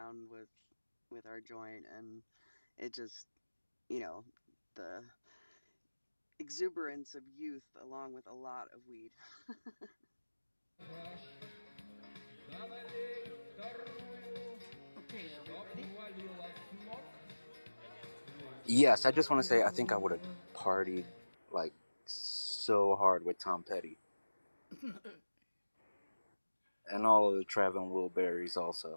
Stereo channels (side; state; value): both; inverted; correlation -1.00